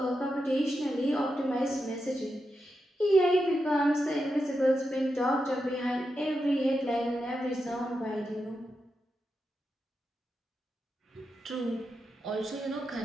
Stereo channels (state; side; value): normal; both; correlation 0.87